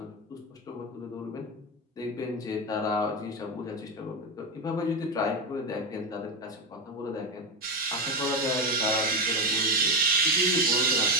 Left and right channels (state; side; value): normal; both; correlation 0.12